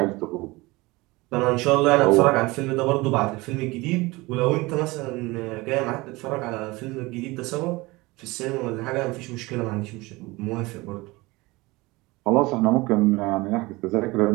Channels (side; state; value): left; quieter; 22.3 dB